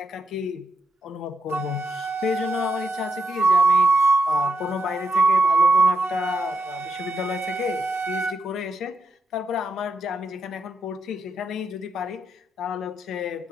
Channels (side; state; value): both; normal; correlation 0.82